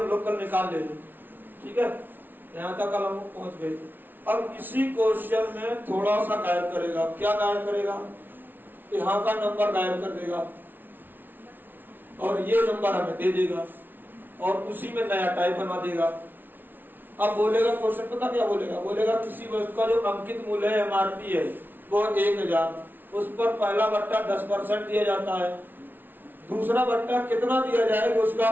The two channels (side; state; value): left; late; 0.092 ms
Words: लोग कल निकाल ले, ठीक है। यहाँ तक कल हम पहुंच गए। अब इसी क्वेश्चन में थोड़ा सा गायब करेगा। क्या गायब करेगा, यहाँ का नंबर गायब कर देगा और ये नंबर हमें दे देगा और उसी में नया टाइप बना देगा। अब बोलेगा क्वेश्चन, पता क्या बोलेगा, बोलेगा किसी वस्तु का जो अंकित मूल्य है MRP है वो 1000, उस पर पहला बट्टा 10% दिया जाता है, दूसरा बट्टा कितना दिया जाएगा, उसका